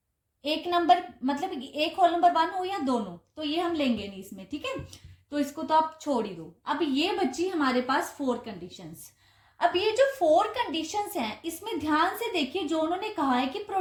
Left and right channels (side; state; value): both; identical; correlation 1.00